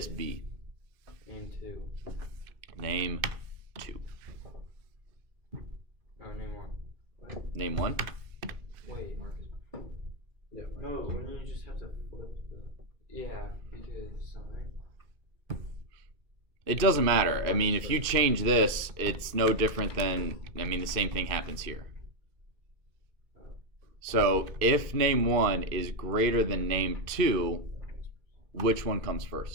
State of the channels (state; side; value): late; left; 2.5 ms